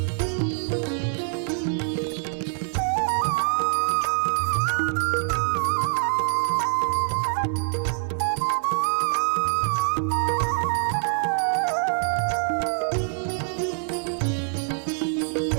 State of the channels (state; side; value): silent; left; 62 dB below the other